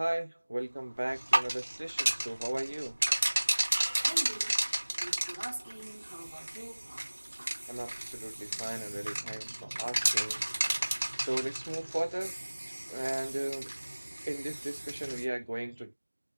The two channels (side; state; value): both; inverted; correlation -1.00